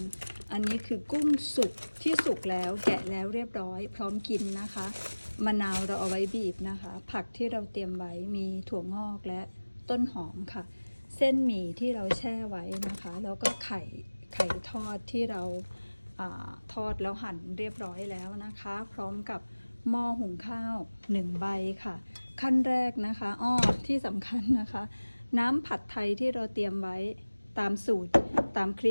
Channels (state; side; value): inverted; both; correlation -1.00